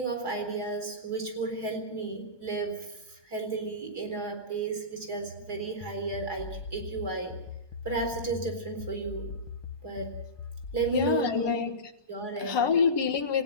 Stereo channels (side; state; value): right; late; 1.2 ms